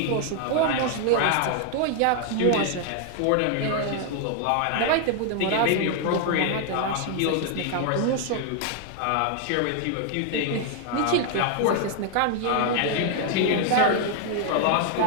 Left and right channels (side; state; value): both; different; correlation 0.00